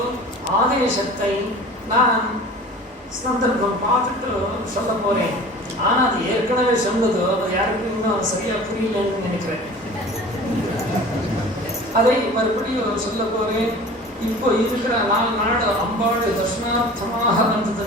ஆதேசத்தை நான் சந்தர்ப்பம் பார்த்துட்டு சொல்ல போகிறேன். ஆனால் அது ஏற்கனவே சொன்னதோ அது யாருக்கும் இன்னும் சரியாக புரியலன்னு நினைக்கிறேன். அதை மறுபடியும் சொல்ல போகிறேன். இப்போ இருக்கிற 4 நாள் அம்பா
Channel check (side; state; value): both; normal; correlation 0.41